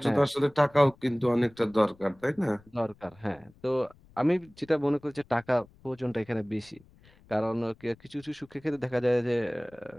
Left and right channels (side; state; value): left; noise; rumble, 27 dB below the sound